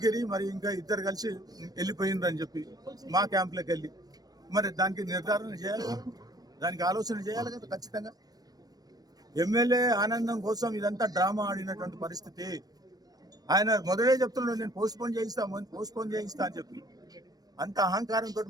మరి ఇంకా ఇద్దరు కలిసి వెళ్ళిపోయిందని చెప్పి మా క్యాంప్లోకి వెళ్ళి, మరి దానికి నిర్ధారణ చేయాలి, దానికి ఆలోచన చేయాలి కదా ఖచ్చితంగా. ఎమ్మెల్యే ఆనందం కోసం ఇదంతా డ్రామా ఆడినటువంటి పరిస్థితి. ఆయన మొదలే చెప్తున్నాడు, నేను పోస్ట్పోన్ చేయిస్తా అని చెప్పి. అంత అహంకారంతో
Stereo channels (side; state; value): left; late; 0.19 ms